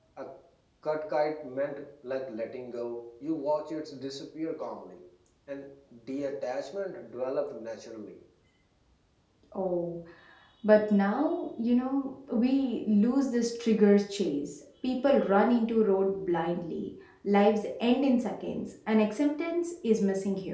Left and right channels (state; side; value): identical; both; correlation 1.00